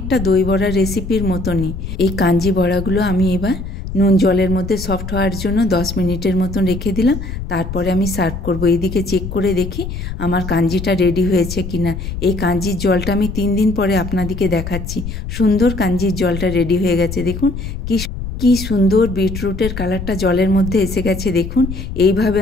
দই বড়ার রেসিপির মতনই। এই কাঞ্জি বড়াগুলো আমি এবার নুন জলের মধ্যে সফট হওয়ার জন্য 10 মিনিটের মতন রেখে দিলাম। তারপরে আমি সার্ভ করব। এইদিকে চেক করে দেখি আমার কাঞ্জিটা রেডি হয়েছে কিনা। এই কাঞ্জির জলটা আমি 3 দিন পরে আপনাদেরকে দেখাচ্ছি। সুন্দর কাঞ্জির জলটা রেডি হয়ে গেছে, দেখুন কি সুন্দর বিটরুটের কালারটা জলের মধ্যে এসে গেছে। দেখুন এইভাবে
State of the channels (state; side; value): noise; left; rumble, 7 dB below the sound